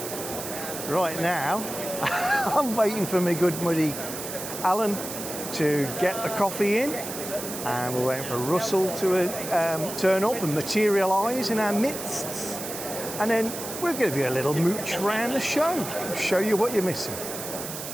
right now I'm waiting for my good buddy Alan to get the coffee in, and we're waiting for Russell to turn up and materialise in our midst, and then we'll give you a little mooch around the show you what you're missing.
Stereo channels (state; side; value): noise; right; hiss, 8 dB below the sound